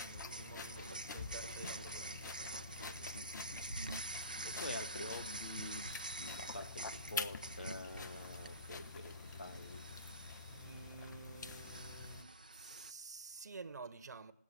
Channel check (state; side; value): inverted; both; correlation -0.34